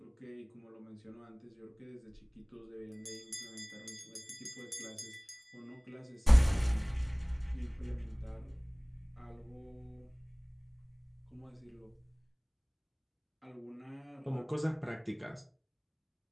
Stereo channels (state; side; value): identical; both; correlation 1.00